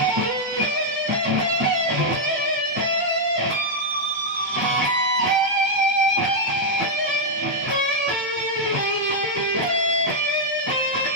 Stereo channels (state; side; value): normal; both; correlation -0.04